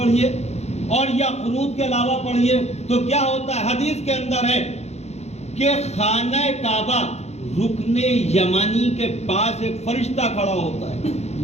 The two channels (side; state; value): right; late; 0.31 ms